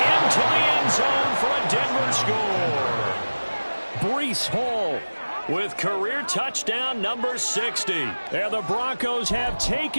into the end zone for a Denver score. Breece Hall with career touchdown number 60. And the Broncos have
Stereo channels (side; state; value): both; inverted; correlation -1.00